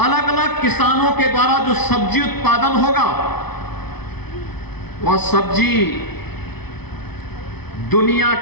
अलग अलग किसानों के द्वारा जो सब्जी उत्पादन होगा, वह सब्जी दुनिया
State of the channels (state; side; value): late; right; 0.98 ms